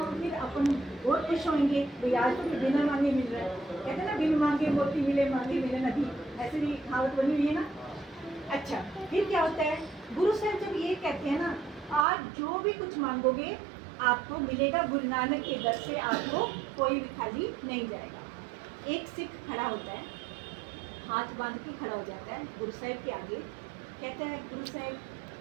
फिर अपन बहुत खुश होंगे, भाई आज तो बिना मांगे मिल रहा है। कहते हैं ना, बिन मांगे मोती मिले, मांगे मिले नदी, ऐसे भी कहावत बनी हुई है ना। अच्छा, फिर क्या होता है, गुरु साहब जब ये कहते हैं ना, आज जो भी कुछ मांगोगे आपको मिलेगा, गुरु नानक के दर से आपको कोई भी खाली नहीं जाएगा। एक सिख खड़ा होता है, हाथ बांध के खड़ा हो जाता है गुरु साहब के आगे, कहता है गुरु साहब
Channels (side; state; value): left; drops out; at 12.1 s